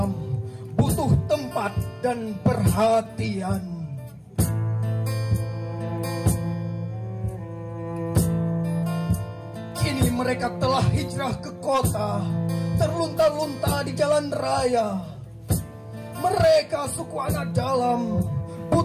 butuh tempat dan perhatian. Kini mereka telah hijrah ke kota, terlunta-lunta di jalan raya. Mereka suku anak dalam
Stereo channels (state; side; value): identical; both; correlation 1.00